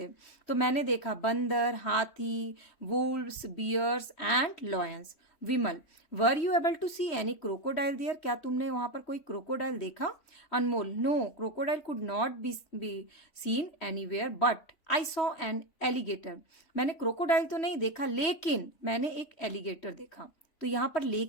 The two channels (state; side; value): late; right; 3.1 ms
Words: तो मैंने देखा बंदर, हाथी, wolves, bears and lions. Vimal, were you able to see any crocodile there? क्या तुमने वहां पर कोई क्रोकोडाइल देखा? Anmol, no, crocodile could not be seen anywhere but I saw an alligator. मैंने क्रोकोडाइल तो नहीं देखा लेकिन मैंने एक एलिगेटर देखा। तो यहाँ पर